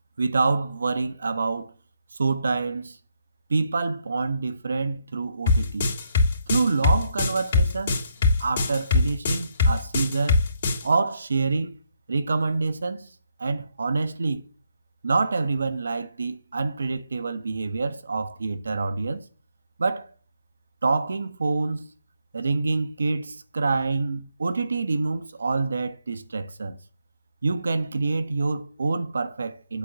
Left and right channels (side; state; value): both; inverted; correlation -0.79